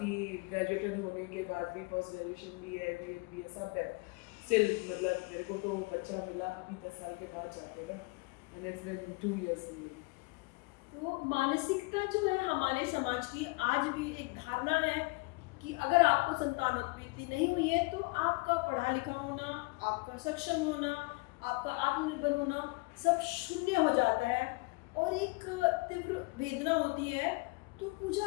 ग्रेजुएटेड होने के बाद भी, पोस्ट ग्रेजुएशन भी है, बी ए सब है, स्टिल मतलब मेरे को तो बच्चा मिला अभी 10 साल के बाद जाके, एंड इट्स बिन 2 इयर्स। तो मानसिकता जो है हमारे समाज की, आज भी एक धारणा है कि अगर आपको संतानोत्पत्ति नहीं हुई है तो आपका पढ़ा लिखा होना, आपका सक्षम होना, आपका आत्मनिर्भर होना सब शून्य हो जाता है और एक तीव्र वेदना होती है। तो पूजा,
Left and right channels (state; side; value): quieter; right; 27.0 dB